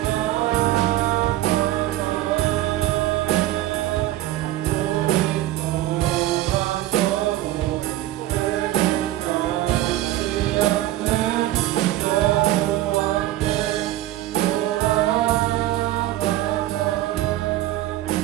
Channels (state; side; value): quieter; left; 15.0 dB